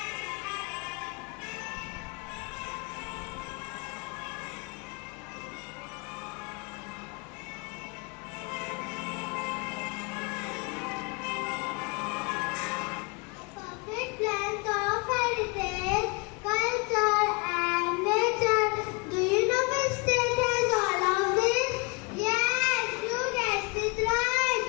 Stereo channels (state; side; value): quieter; right; 30.2 dB